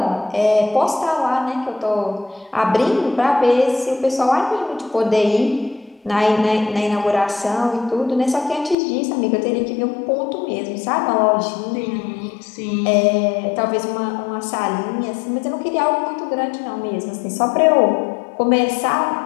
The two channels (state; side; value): drops out; right; at 8.8 s